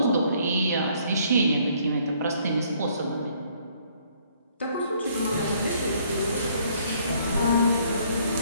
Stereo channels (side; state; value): both; inverted; correlation -0.64